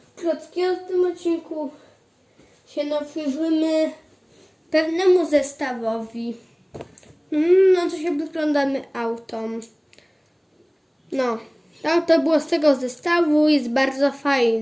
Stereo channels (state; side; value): identical; both; correlation 1.00